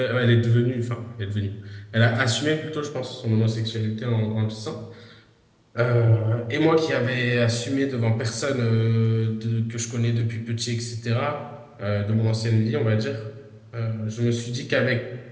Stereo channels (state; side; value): identical; both; correlation 1.00